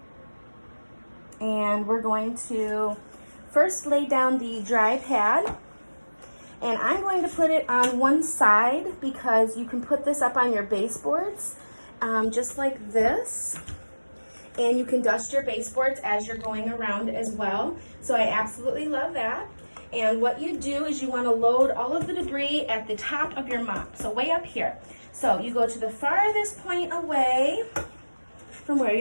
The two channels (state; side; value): inverted; both; correlation -1.00